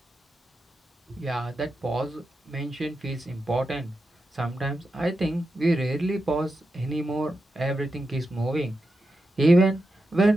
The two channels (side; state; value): both; normal; correlation 0.88